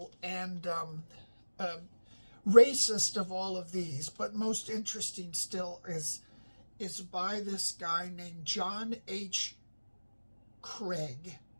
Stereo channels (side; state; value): both; inverted; correlation -1.00